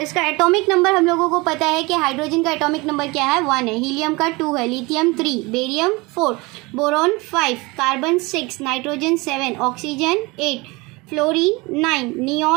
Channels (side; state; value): left; quieter; 24.5 dB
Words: इसका एटॉमिक नंबर हम लोगों को पता है कि हाइड्रोजन का एटॉमिक नंबर क्या है? 1 है, हीलियम का 2 है, lithium 3, barium 4, boron 5, carbon 6, nitrogen 7, oxygen 8, fluorine 9,